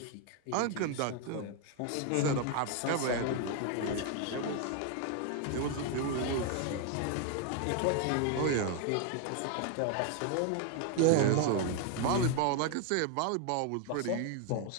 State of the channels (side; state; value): both; different; correlation 0.00